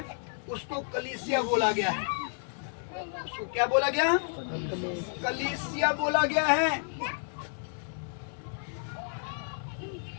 उसको कलीसिया बोला गया है। उसको क्या बोला गया? कलीसिया बोला गया है।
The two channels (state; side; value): silent; right; 57 dB below the other